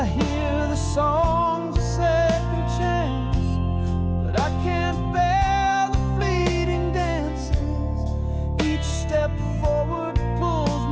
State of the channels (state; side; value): identical; both; correlation 1.00